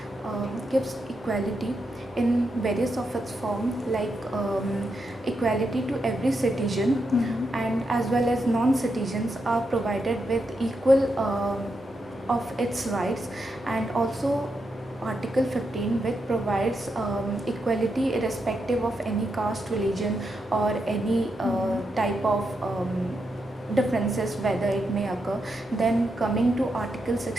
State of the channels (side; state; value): both; normal; correlation 0.84